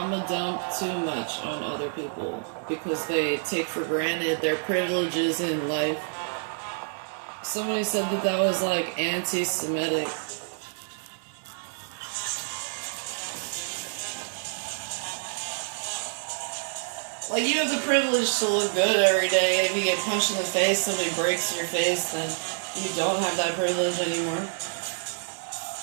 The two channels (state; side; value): silent; left; digital silence